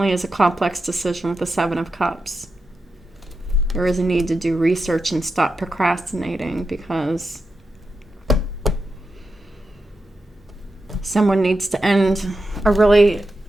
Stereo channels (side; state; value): both; normal; correlation 0.89